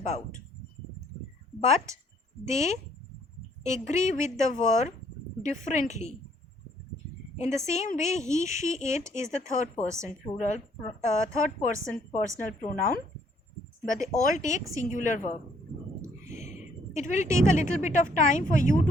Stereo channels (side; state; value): both; normal; correlation 0.65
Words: But they agree with the verb differently. In the same way, he, she, it is the third person plural, third person personal pronoun, but they all take singular verb. It will take a little bit of time for you